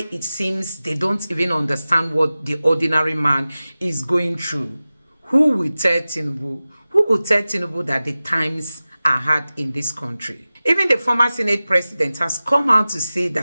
it seems they don't even understand what the ordinary man is going through. Who will tell Tinubu? Who will tell Tinubu that the times are hard in this country? Even the former Senate president has come out to say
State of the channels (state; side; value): inverted; both; correlation -0.96